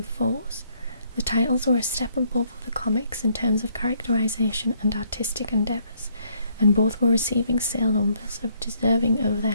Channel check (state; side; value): inverted; both; correlation -0.68